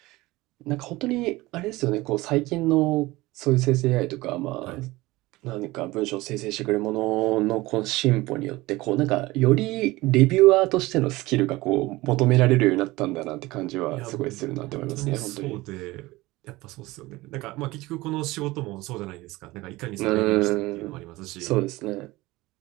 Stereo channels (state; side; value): quieter; left; 20.0 dB